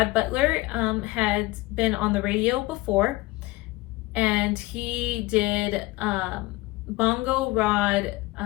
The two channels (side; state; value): right; quieter; 20.6 dB